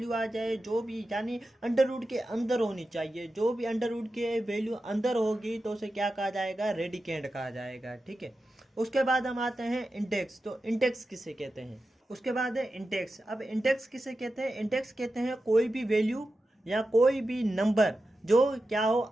आ जाए जो भी, यानी अंडर रूट के अंदर होनी चाहिए। जो भी अंडर रूट के वैल्यू अंदर होगी तो उसे क्या कहा जाएगा? रेडिकेंट कहा जाएगा। ठीक है। उसके बाद हम आते हैं इंडेक्स। तो इंडेक्स किसे कहते हैं? उसके बाद है इंडेक्स। अब इंडेक्स किसे कहते हैं? इंडेक्स कहते हैं कोई भी वैल्यू या कोई भी नंबर जो क्या हो,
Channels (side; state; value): both; normal; correlation 0.91